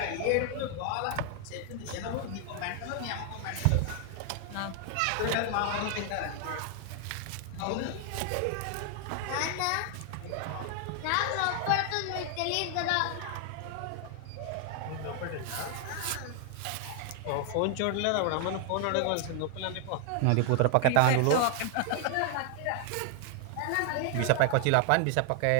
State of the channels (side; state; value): both; different; correlation 0.00